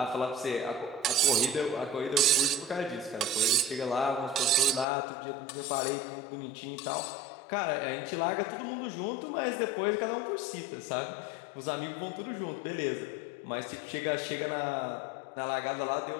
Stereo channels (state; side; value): drops out; right; at 4.9 s